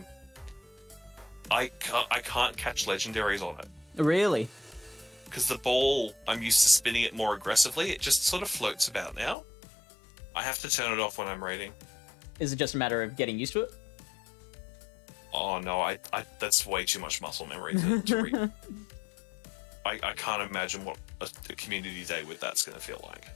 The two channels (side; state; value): right; drops out; at 9.3 s